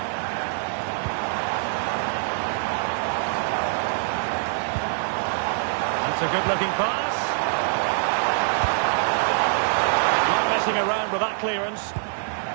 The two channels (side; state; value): left; silent; 58 dB below the other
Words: That's a good-looking pass. Not messing around with that clearance.